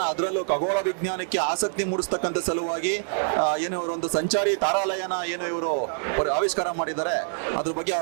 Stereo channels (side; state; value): left; silent; 61 dB below the other